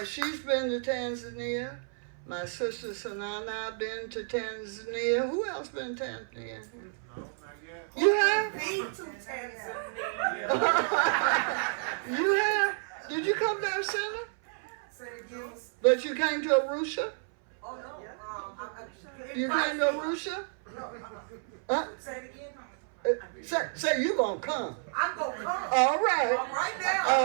she's been to Tanzania. My sister Sanana have been to Tanzania. Who else been to Tanzania? You have? Been to Tanzania. You have? Did you come to our center? Say it again. But you came to Arusha? Oh, no. You came to Arusha? No. Say it again. Say you gonna come. I'm going to come. All right. Right now.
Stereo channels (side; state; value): left; silent; 57 dB below the other